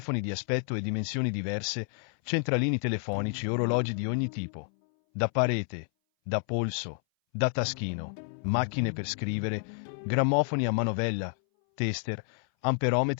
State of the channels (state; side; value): silent; right; 58 dB below the other